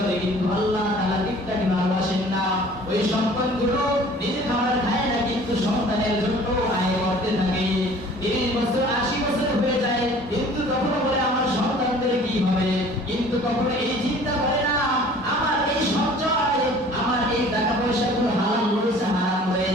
কিন্তু আল্লাহ তাআলা গিফটারি ভালোবাসেন না। ওই সম্পদগুলো নিজে খাবার খায় না, কিন্তু সন্তানের জন্য আয় করতে থাকে। 30 বছর 80 বছর হয়ে যায়, কিন্তু কখনো বলে আমার সন্তানদের কি হবে, কিন্তু কখনো এই চিন্তা করে না আমার এই সঞ্চয়, আমার এই টাকা পয়সাগুলো হালাল রয়েছে হারাম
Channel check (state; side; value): normal; both; correlation 0.49